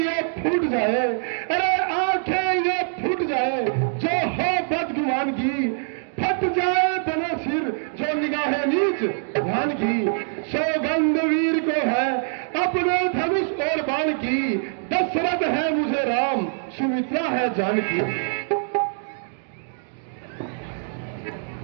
फूट जाए, अरे आंखें ये फूट जाए जो हो बदगुमान की, फट जाए बने सिर जो निगाहें नीच ध्यान की। सौगंध वीर को है अपने धनुष और बाण की, दशरथ है मुझे राम, सुमित्रा है जानकी।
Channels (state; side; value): silent; left; digital silence